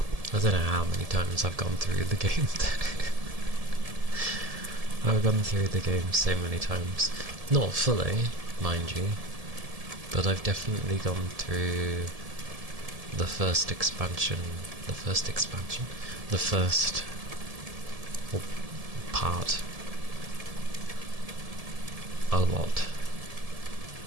I don't know how many times I've gone through the game. I've gone through the game so many times. Not fully, mind you, but I've definitely gone through the first expansion, the first part a lot.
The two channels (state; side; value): late; left; 1.7 ms